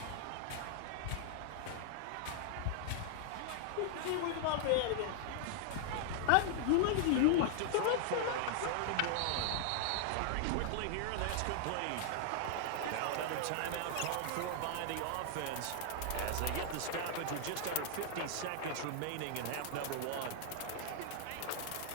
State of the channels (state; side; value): different; both; correlation -0.01